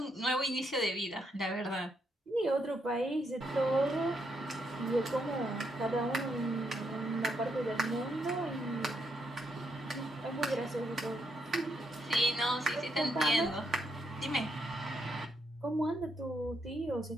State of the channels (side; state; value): both; normal; correlation 0.78